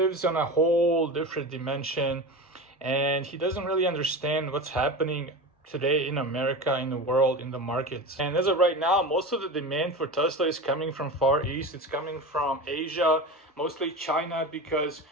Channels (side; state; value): both; normal; correlation 0.28